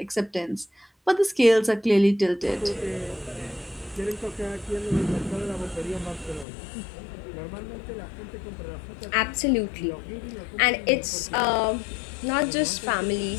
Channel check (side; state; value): right; drops out; at 6.5 s